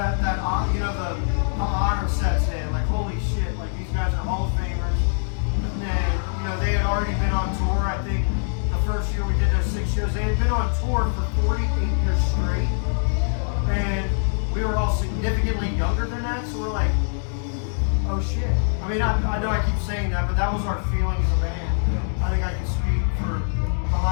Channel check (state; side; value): silent; right; digital silence